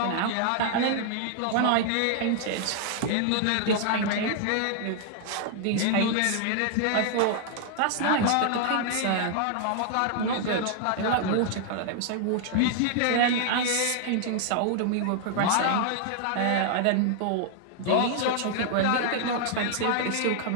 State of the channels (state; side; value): different; both; correlation 0.00